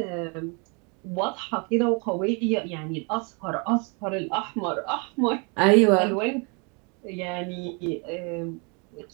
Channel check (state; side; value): quieter; left; 33.4 dB